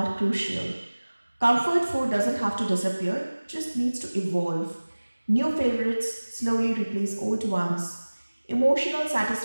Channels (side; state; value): both; inverted; correlation -1.00